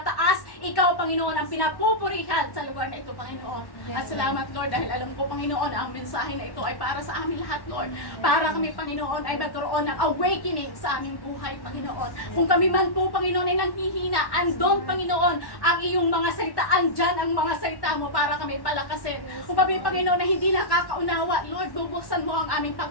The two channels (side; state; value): right; late; 1.1 ms